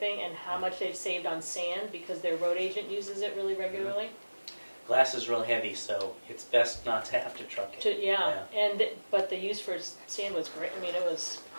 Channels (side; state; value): both; inverted; correlation -1.00